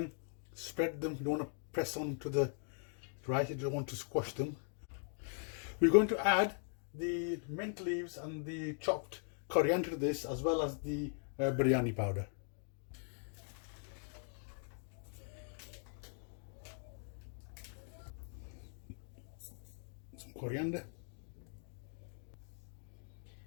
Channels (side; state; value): right; silent; 51 dB below the other